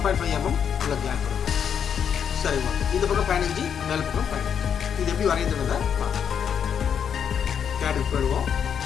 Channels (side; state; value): right; quieter; 7.9 dB